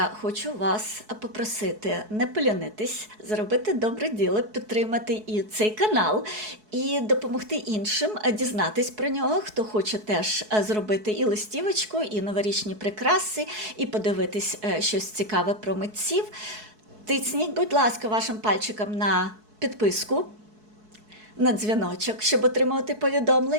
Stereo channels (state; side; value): late; left; 4.7 ms